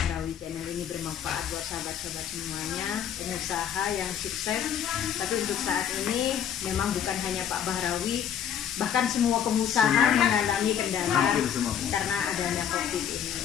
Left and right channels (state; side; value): quieter; right; 8.9 dB